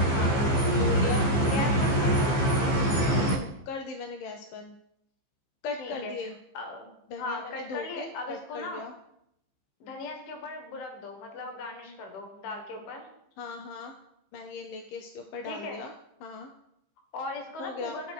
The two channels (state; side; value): late; right; 15 ms